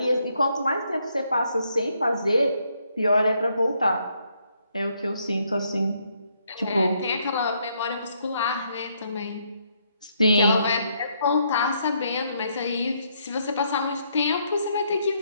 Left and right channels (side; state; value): both; inverted; correlation -0.73